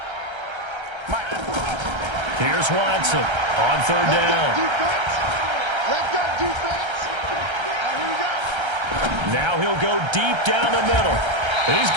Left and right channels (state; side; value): late; left; 1.3 ms